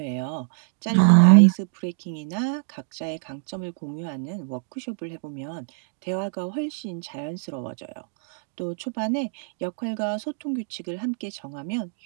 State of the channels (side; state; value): left; silent; digital silence